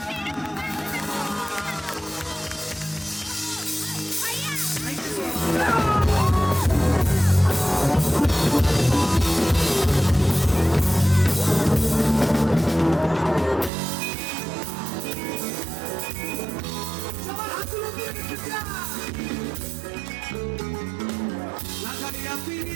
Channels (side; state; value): left; drops out; at 13.7 s